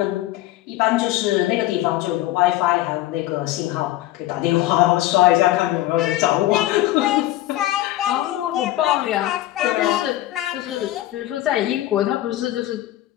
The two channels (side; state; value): right; quieter; 15.4 dB